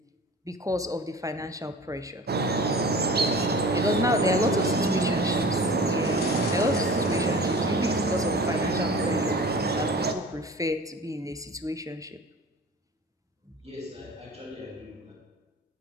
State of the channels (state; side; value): normal; both; correlation 0.40